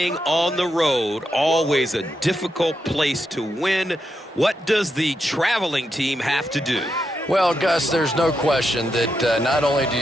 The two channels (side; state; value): both; normal; correlation 0.84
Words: on the road, always a difficult place to win. What does the traveling team have to do? Well, Gus, there's no question that not only do